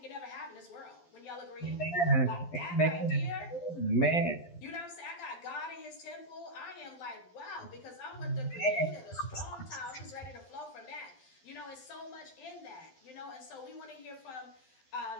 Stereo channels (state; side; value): late; right; 12 ms